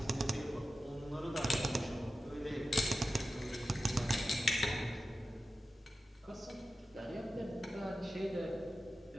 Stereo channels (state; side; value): normal; both; correlation 0.92